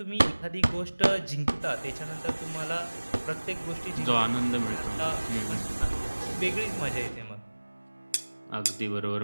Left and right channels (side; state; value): both; inverted; correlation -1.00